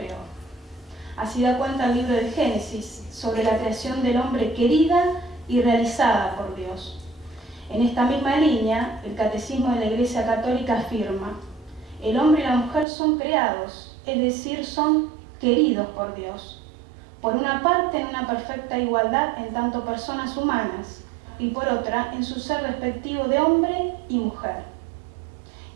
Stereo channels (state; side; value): drops out; left; at 12.9 s